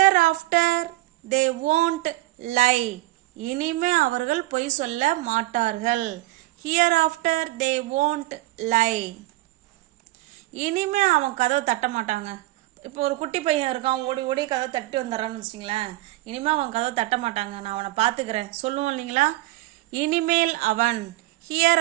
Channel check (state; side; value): quieter; left; 18.6 dB